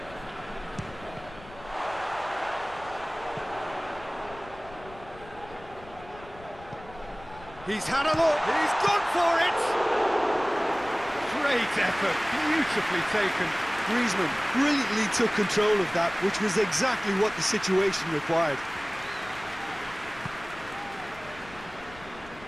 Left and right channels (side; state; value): left; noise; rumble, 20 dB below the sound